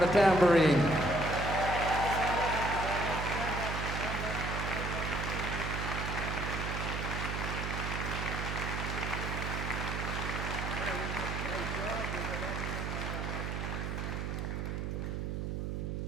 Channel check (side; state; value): right; noise; hum, 2 dB below the sound